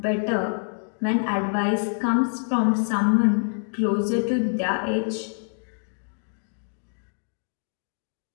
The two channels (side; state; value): right; silent; digital silence